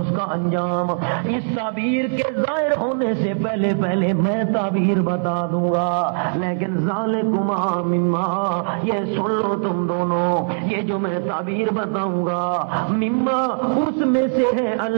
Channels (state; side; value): silent; left; 61 dB below the other